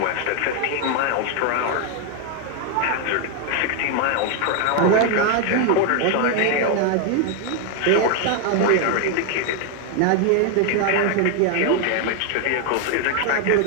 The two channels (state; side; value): different; both; correlation 0.01